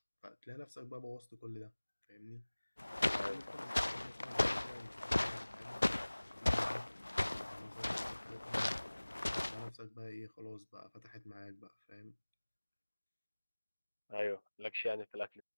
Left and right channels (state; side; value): inverted; both; correlation -1.00